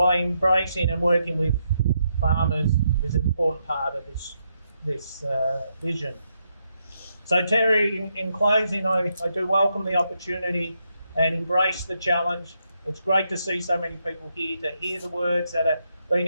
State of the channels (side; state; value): both; inverted; correlation -0.80